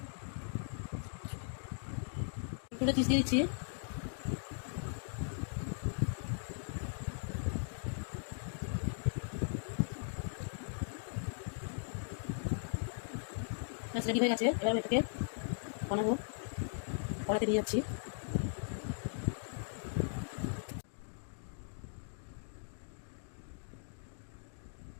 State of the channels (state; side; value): silent; right; digital silence